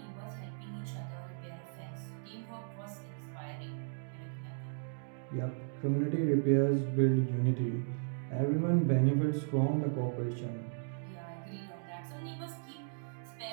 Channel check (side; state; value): left; silent; digital silence